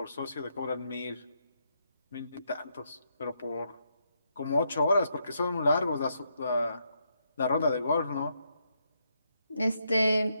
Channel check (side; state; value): both; inverted; correlation -0.79